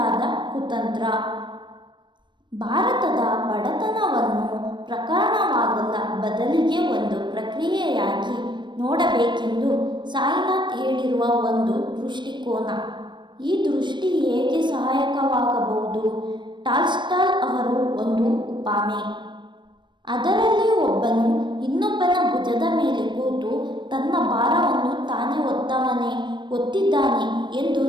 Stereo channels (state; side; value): late; left; 0.22 ms